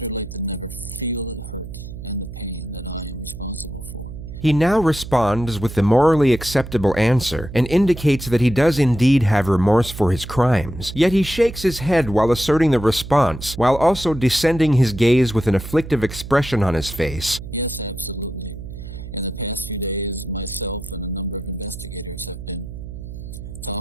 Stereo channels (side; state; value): right; noise; hum, 11 dB below the sound